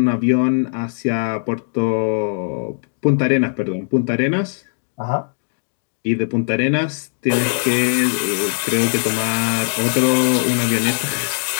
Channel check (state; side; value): silent; right; digital silence